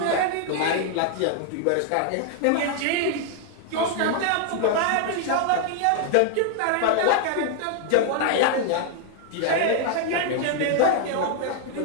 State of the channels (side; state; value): both; different; correlation 0.00